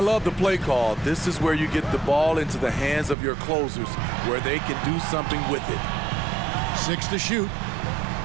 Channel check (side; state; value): left; drops out; at 3.2 s